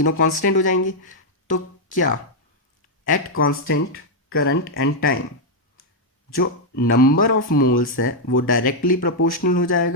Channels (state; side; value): normal; both; correlation -0.02